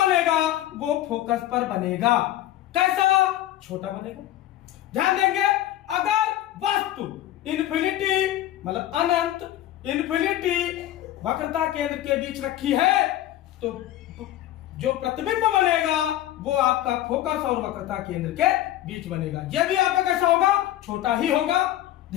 वो फोकस पर बनेगा। कैसा? छोटा बनेगा। ध्यान देंगे, अगर वस्तु इंफिनिटी मतलब अनंत, इंफिनिटी वक्रता केंद्र के बीच रखी है तो जो प्रतिबिंब बनेगा वो आपका फोकस और वक्रता केंद्र के बीच बनेगा। यह भी आपका कैसा होगा? छोटा ही होगा।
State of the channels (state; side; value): quieter; right; 13.6 dB